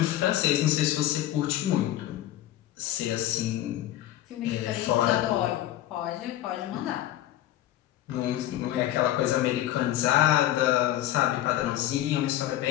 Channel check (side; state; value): right; quieter; 13.6 dB